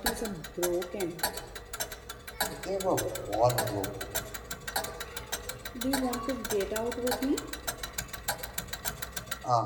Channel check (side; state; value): both; identical; correlation 1.00